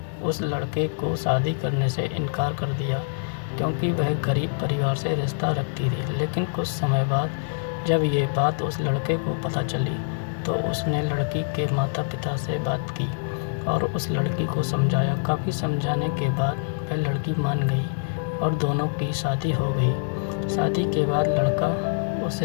उस लड़के को शादी करने से इनकार कर दिया, क्योंकि वह गरीब परिवार से रिश्ता रखती थी। लेकिन कुछ समय बाद जब ये बात उस लड़के को पता चली, तो उसने लड़की के माता पिता से बात की और उस लड़की को समझाया। काफ़ी समझाने के बाद वह लड़की मान गई और दोनों की शादी हो गई। शादी के बाद लड़का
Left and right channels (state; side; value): silent; right; digital silence